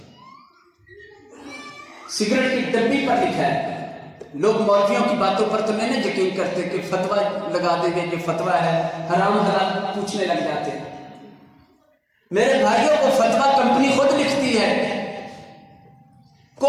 سگریٹ کی ڈبی پر لکھا ہے لوگ مولویوں کی باتوں پر تو نہیں یقین کرتے کہ فتویٰ لگا دیں گے، یہ فتویٰ ہے، حرام حلال پوچھنے لگ جاتے ہیں۔ میرے بھائیوں کو فتویٰ کمپنی خود لکھتی ہے،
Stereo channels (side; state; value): both; identical; correlation 1.00